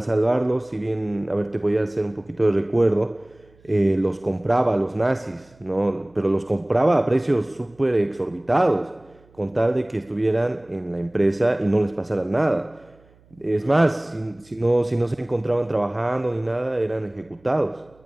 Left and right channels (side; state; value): right; noise; hum, 30 dB below the sound